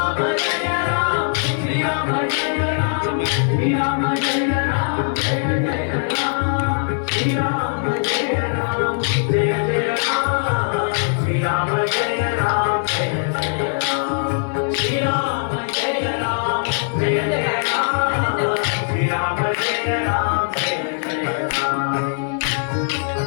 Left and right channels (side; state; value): right; silent; digital silence